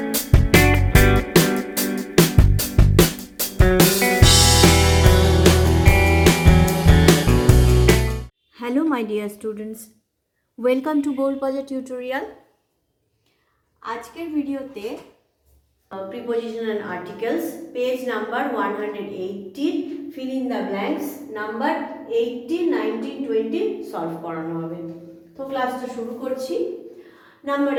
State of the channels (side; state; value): both; identical; correlation 1.00